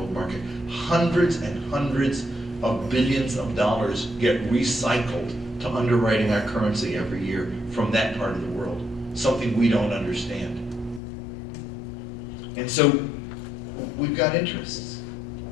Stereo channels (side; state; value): right; drops out; at 11.0 s